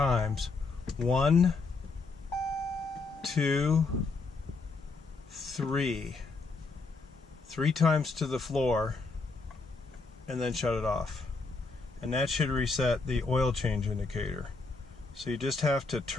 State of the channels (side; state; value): right; quieter; 3.9 dB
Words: 1, 2, 3. 3 times to the floor, and then shut it off. And that should reset the oil change indicator. So you just have to